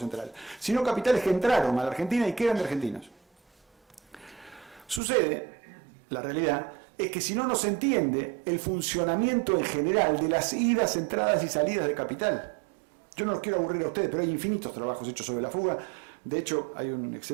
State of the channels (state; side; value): drops out; left; at 5.0 s